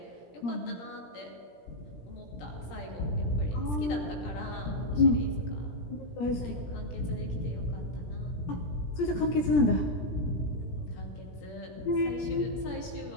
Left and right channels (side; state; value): right; late; 17 ms